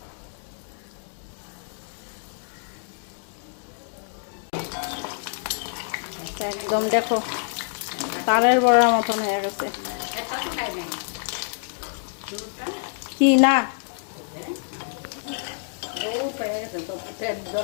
একদম দেখো তালের বড়ার মতন হয়ে গেছে। কি না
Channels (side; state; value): right; silent; digital silence